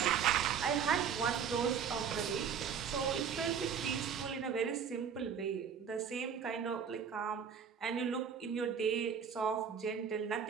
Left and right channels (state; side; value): quieter; left; 7.2 dB